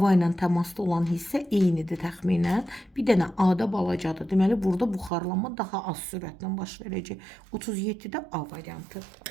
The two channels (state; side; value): drops out; left; at 5.1 s